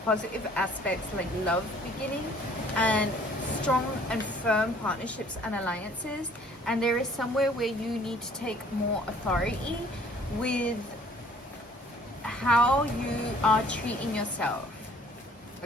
positive aspects like love beginning and strong and firm partnerships and alliances. And there is somewhere where you need to take more authority with how you are treating yourself,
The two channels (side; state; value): both; normal; correlation 0.56